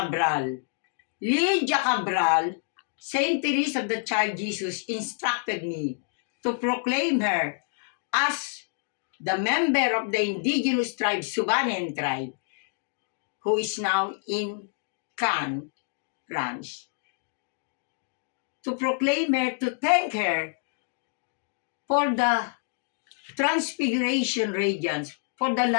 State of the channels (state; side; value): silent; right; digital silence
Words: Lydia Cabral, Saint Therese of the Child Jesus, instructed me to proclaim her as the member of the indigenous tribe, Subanen tribe, who is now in Cannes, France. To proclaim her, to thank her for the transfiguration radiance, for the